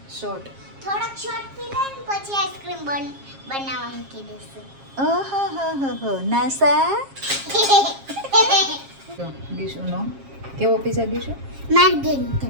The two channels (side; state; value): left; late; 7.4 ms